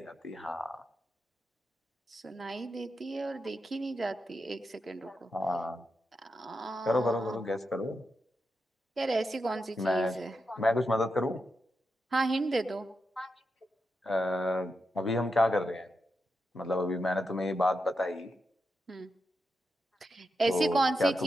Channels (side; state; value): both; normal; correlation 0.87